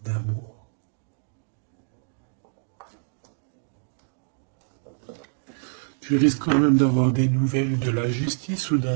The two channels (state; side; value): silent; left; digital silence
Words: d'amour. Tu risques quand même d'avoir des nouvelles de la justice ou